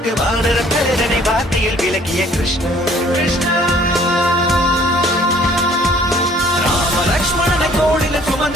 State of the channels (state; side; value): normal; both; correlation 0.57